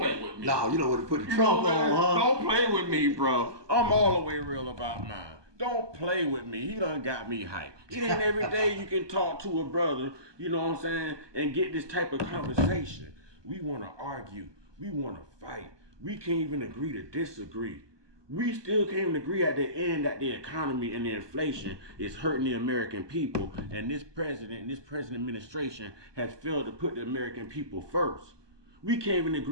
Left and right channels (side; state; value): left; late; 1.2 ms